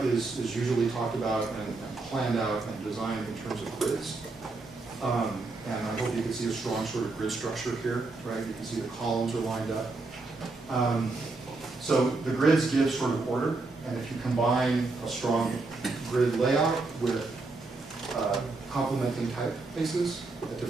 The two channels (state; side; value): quieter; left; 3.5 dB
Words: is usually talked about and planned out and designed in terms of grids. And I hope you can see a strong sort of grid structure here, right? You can see the columns are lined up. So the grids give sort of order, and if you combine a strong grid layout with complementing typefaces at